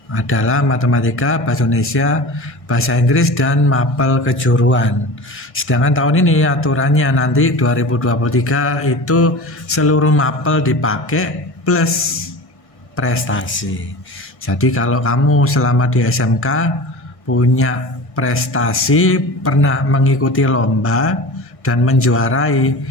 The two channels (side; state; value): right; late; 1.6 ms